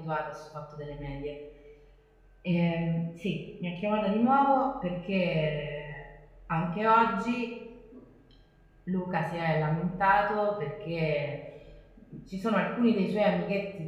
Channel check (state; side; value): identical; both; correlation 1.00